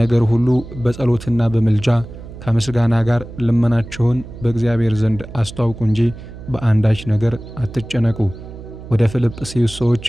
ሁሉ በጸሎትና በምልጃ ከምስጋና ጋር ልመናችሁን በእግዚአብሔር ዘንድ አስተዋውቁ እንጂ በአንዳች ነገር አትጨነቁ። ወደ ፊልጵስዩስ ሰዎች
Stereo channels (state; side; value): noise; right; hum, 14 dB below the sound